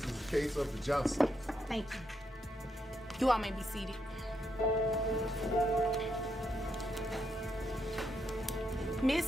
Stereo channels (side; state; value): both; normal; correlation 0.79